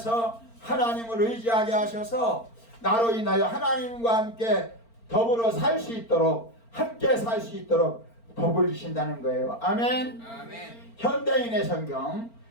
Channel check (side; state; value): right; late; 4.4 ms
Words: 하나님을 의지하게 하셔서 나로 인하여 하나님과 함께 더불어 살 수 있도록, 함께 살 수 있도록 복을 주신다는 거예요. 아멘. 아멘. 현대인의 성경,